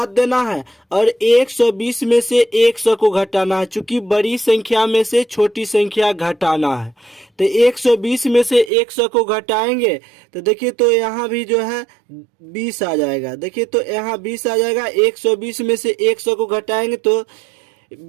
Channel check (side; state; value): left; drops out; at 8.7 s